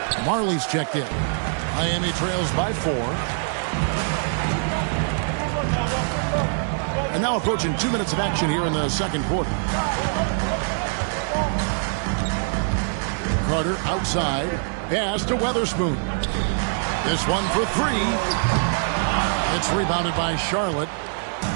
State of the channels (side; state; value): left; silent; 63 dB below the other